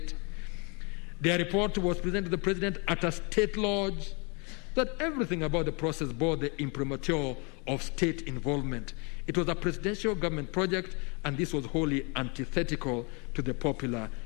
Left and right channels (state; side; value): quieter; right; 32.5 dB